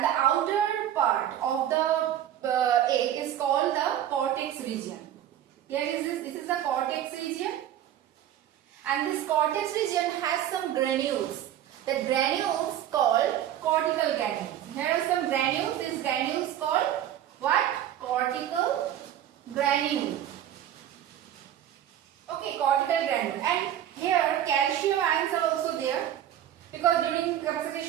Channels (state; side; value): quieter; left; 11.3 dB